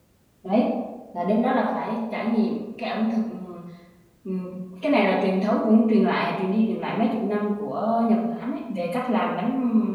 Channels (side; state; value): both; identical; correlation 1.00